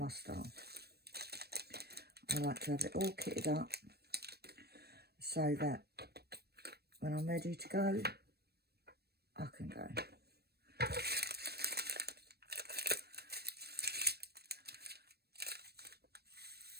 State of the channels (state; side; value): late; left; 0.47 ms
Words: style. I like to have it all kitted up so that when I'm ready to go, I can go.